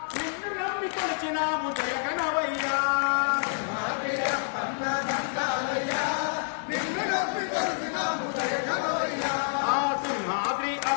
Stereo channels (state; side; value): silent; right; digital silence